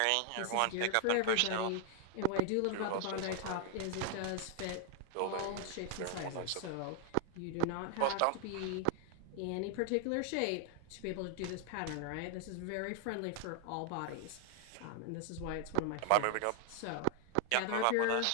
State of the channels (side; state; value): both; different; correlation 0.00